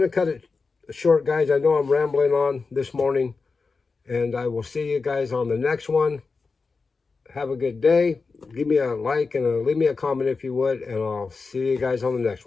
to cut it short, guys. I know I'm rambling on this morning. And I will see you guys on the next one. Have a good day. Give me a like and leave me a comment if you would. And I'll see you guys on the next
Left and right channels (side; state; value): right; quieter; 4.4 dB